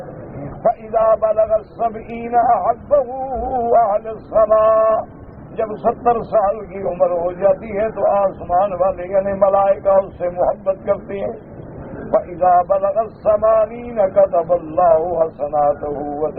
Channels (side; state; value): both; identical; correlation 1.00